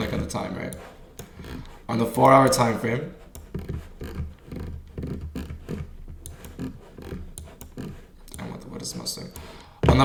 at the time, right? On the 4-hour time frame. On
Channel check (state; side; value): identical; both; correlation 1.00